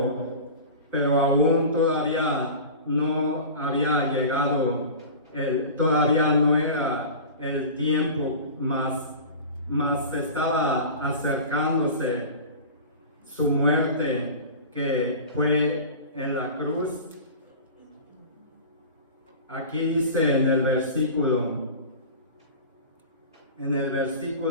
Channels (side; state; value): both; inverted; correlation -0.35